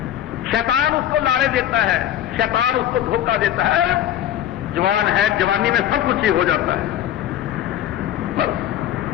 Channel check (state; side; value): quieter; right; 11.6 dB